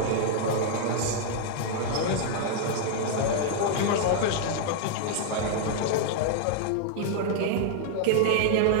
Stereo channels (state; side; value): different; both; correlation 0.00